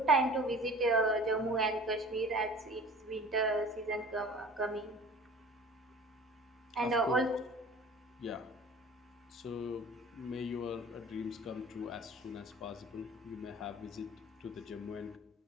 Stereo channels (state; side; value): normal; both; correlation 0.43